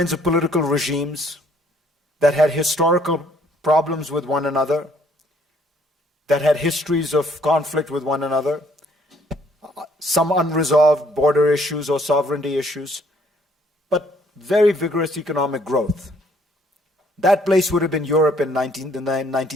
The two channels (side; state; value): both; normal; correlation 0.64